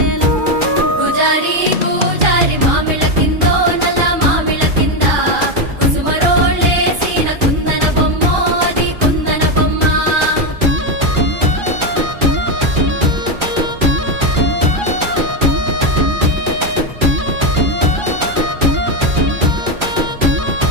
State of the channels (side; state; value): left; late; 2.4 ms